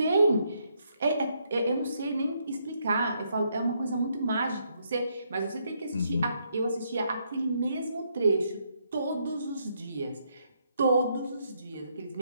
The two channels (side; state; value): both; inverted; correlation -0.75